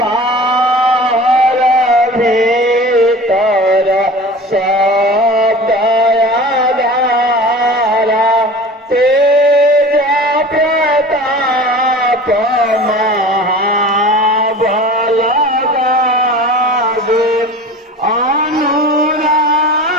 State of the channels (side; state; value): both; normal; correlation 0.38